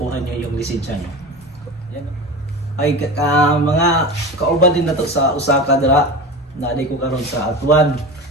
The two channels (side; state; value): both; normal; correlation 0.29